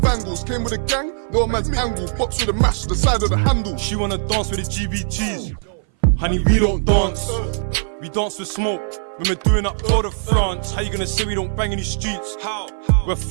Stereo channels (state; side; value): silent; left; 60 dB below the other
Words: Came with a gang, no man's angle. Box with a mash, the side of the handle. She wanna dance with the GBGs. Honey, we don't dance. We dance with smoke. When we're doing up Tour de France. How you gonna say we don't bang in the streets? How? We're